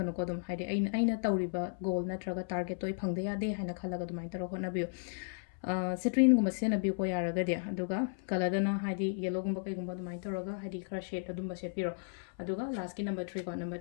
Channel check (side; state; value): right; silent; 55 dB below the other